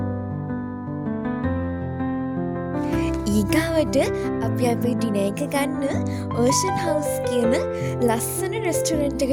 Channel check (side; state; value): both; identical; correlation 1.00